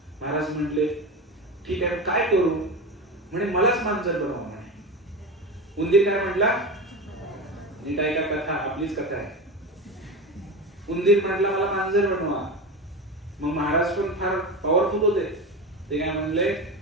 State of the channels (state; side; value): normal; both; correlation 0.23